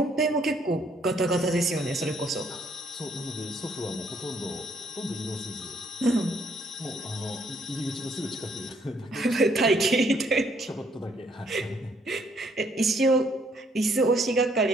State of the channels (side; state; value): both; normal; correlation 0.67